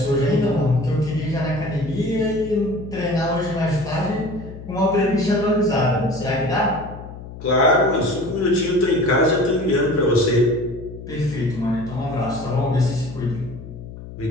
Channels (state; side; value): noise; left; hum, 13 dB below the sound